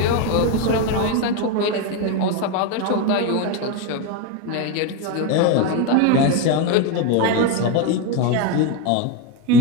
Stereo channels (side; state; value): both; different; correlation 0.03